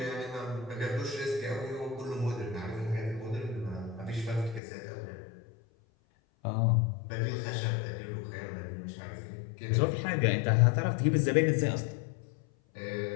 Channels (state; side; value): drops out; right; at 4.6 s